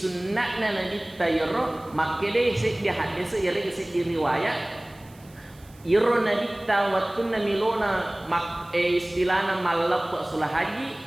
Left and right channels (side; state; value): right; noise; hiss, 27 dB below the sound